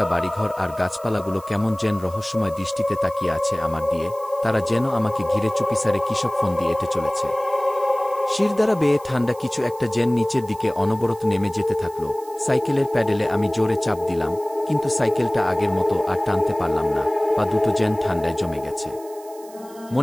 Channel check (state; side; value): noise; right; hiss, 23 dB below the sound